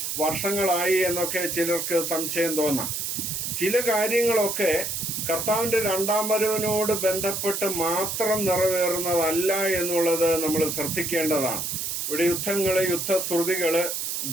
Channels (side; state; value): right; noise; hiss, 3 dB below the sound